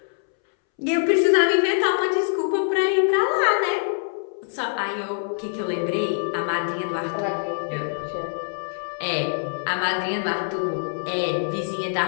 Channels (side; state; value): right; silent; 63 dB below the other